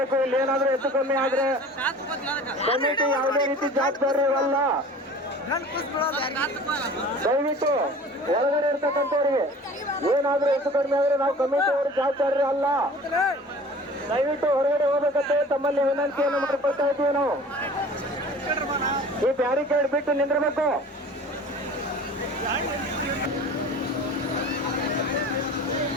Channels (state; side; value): normal; both; correlation 0.43